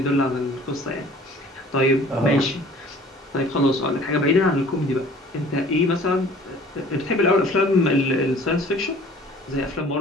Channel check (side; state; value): both; normal; correlation 0.50